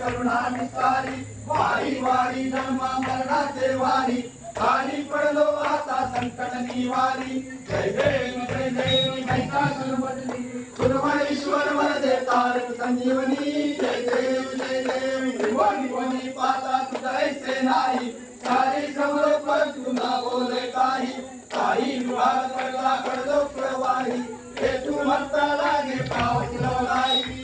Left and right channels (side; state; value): both; identical; correlation 1.00